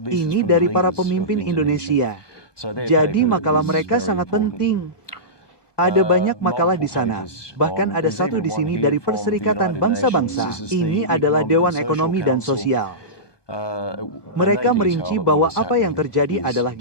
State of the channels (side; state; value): right; late; 1.2 ms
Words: Ini dari para pemimpin Indonesia. Jadi makalah mereka sangat penting. Ada banyak makalah di sana. Bahkan ada satu di sini dari Perserikatan Bangsa-Bangsa. Ini adalah Dewan Ekonomi dan Sosial. Mereka merinci bahwa apa yang terjadi adalah